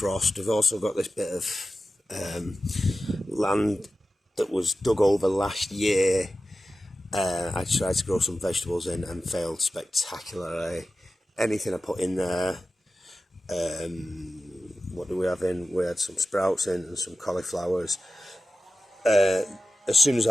We've also got this bit of land that was dug over last year. I tried to grow some vegetables in and failed spectacularly. Anything I put in there, what do we have in? We had some sprouts in and some cauliflowers. As soon as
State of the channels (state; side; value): normal; both; correlation 0.94